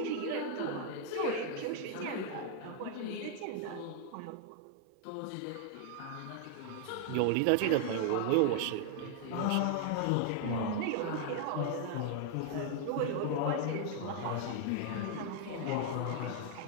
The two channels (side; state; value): both; different; correlation 0.00